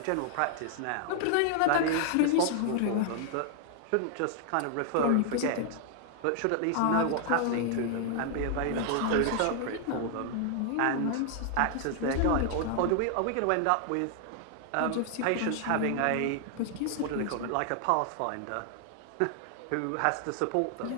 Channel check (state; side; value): different; both; correlation 0.00